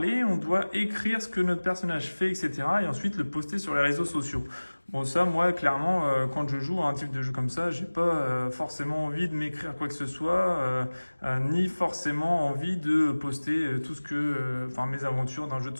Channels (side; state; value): both; inverted; correlation -1.00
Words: on doit écrire ce que notre personnage fait, etc. et ensuite le poster sur les réseaux sociaux. Bon ça, moi, clairement, quand je joue à un type de jeu comme ça, j'ai pas forcément envie de m'écrire quoi que ce soit, ni forcément envie de poster tout ce que, mes aventures d'un jeu de